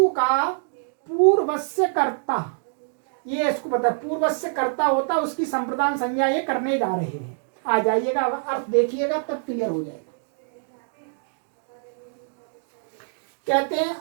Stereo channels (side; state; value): left; silent; digital silence